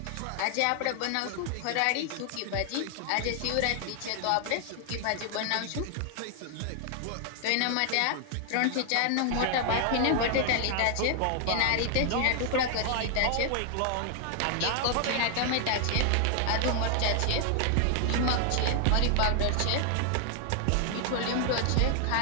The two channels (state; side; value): different; both; correlation 0.00